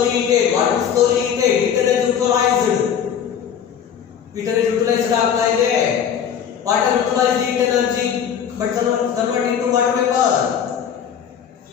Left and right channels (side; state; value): right; quieter; 8.3 dB